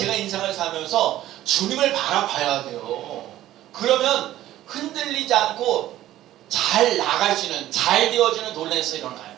인생을 살면서 주님을 바라봐야 돼요. 그러면 흔들리지 않고 잘 나갈 수 있는 잘 되어지는 논란에서 일어나요.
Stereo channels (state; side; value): quieter; left; 13.9 dB